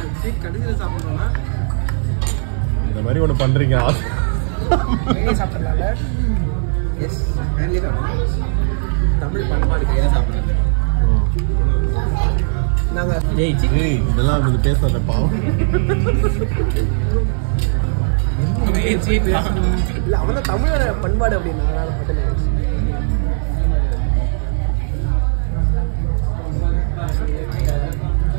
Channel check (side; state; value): left; silent; 59 dB below the other